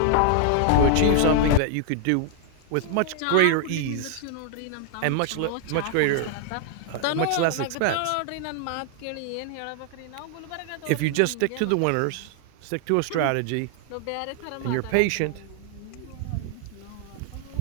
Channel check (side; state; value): both; different; correlation 0.00